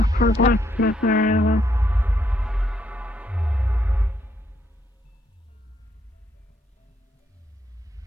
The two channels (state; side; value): normal; both; correlation 0.74